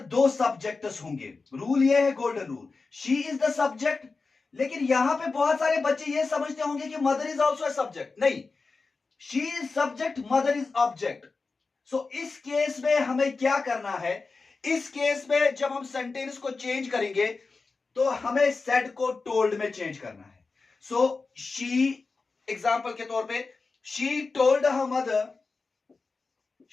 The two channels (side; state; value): right; quieter; 4.1 dB